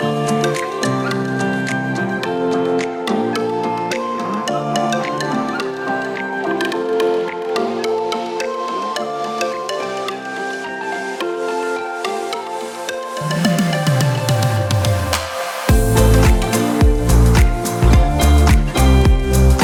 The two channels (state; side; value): identical; both; correlation 1.00